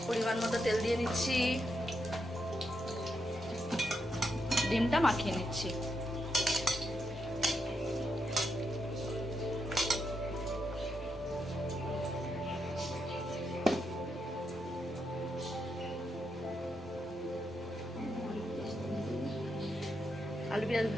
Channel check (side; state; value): both; normal; correlation 0.82